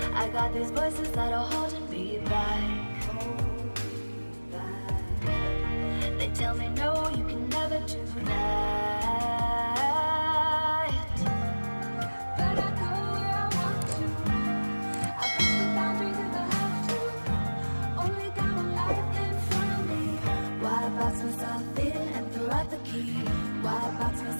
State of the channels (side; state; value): both; inverted; correlation -1.00